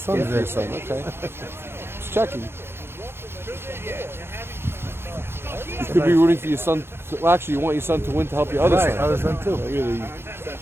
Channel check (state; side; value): late; left; 0.12 ms